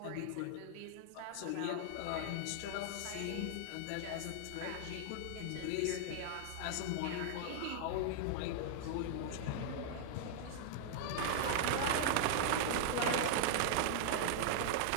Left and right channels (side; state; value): both; different; correlation -0.01